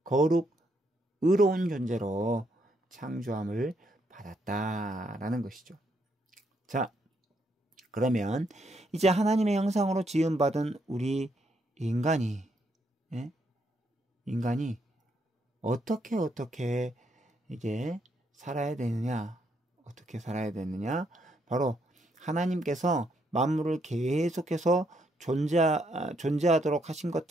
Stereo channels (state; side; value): normal; both; correlation 0.75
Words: 거룩, 의로운 존재로 창조함을 받았다라는 것이죠. 자, 그러면 이제 하나님의 형상으로 지음받은 우리 인간이 어떻게 이게 살아야 되느냐? 어떻게 살아야 되느냐? 바로 하나님께서 만물을 계속해서 존재하도록 하신